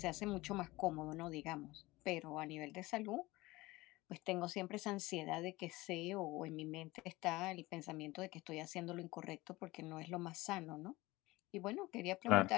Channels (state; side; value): quieter; right; 20.3 dB